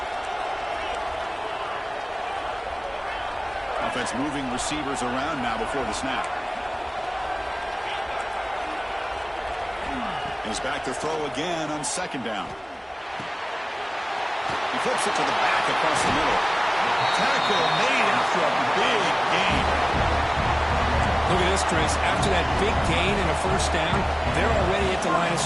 Offense moving receivers around now before the snap. He's back to throw again on second down. He flips it to the back across the middle. Tackle made after a big gain. Look at this, Chris. After that big gain and a first down, they're already at the line of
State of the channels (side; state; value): both; identical; correlation 1.00